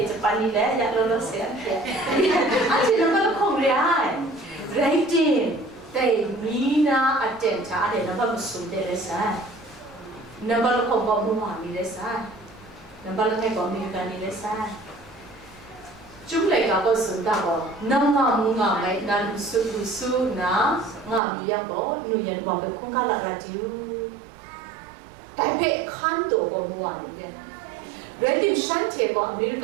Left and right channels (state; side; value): drops out; left; at 21.2 s